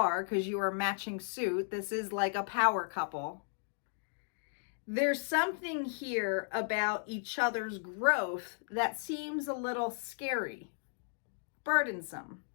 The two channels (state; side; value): silent; right; digital silence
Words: because you are a matching suit, this is like a power couple. There's something here about each other's growth that seems a little scary, burdensome.